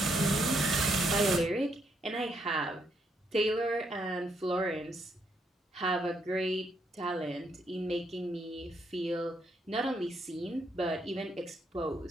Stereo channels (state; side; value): normal; both; correlation 0.75